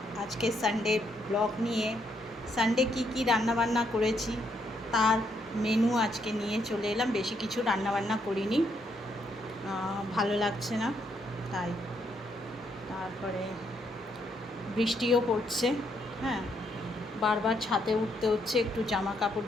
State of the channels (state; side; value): normal; both; correlation 0.74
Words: আজকে সানডে ব্লগ নিয়ে। সানডে কি রান্নাবান্না করেছি তার মেনু আজকে নিয়ে চলে এলাম। বেশি কিছু রান্নাবান্না করিনি, ভালো লাগছে না তাই। তারপরে বৃষ্টিও পড়ছে, হ্যাঁ, বারবার ছাদে উঠতে হচ্ছে একটু জামা